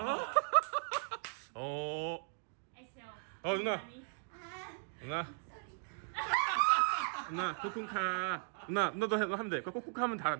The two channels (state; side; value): silent; left; 53 dB below the other